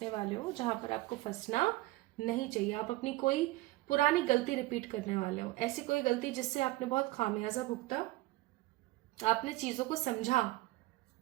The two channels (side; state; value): left; quieter; 18.7 dB